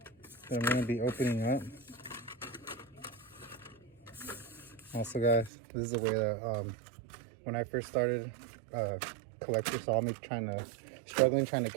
that I'm gonna be opening up. Also, guys, this is the way that when I first started, collector saw me struggling trying to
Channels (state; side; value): drops out; left; at 5.5 s